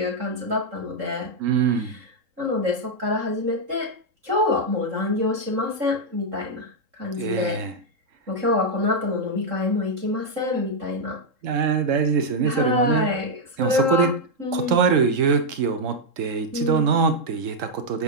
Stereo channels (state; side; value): late; left; 3.7 ms